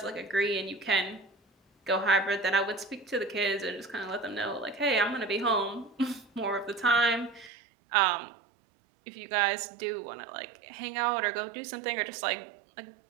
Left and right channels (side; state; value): left; drops out; at 7.5 s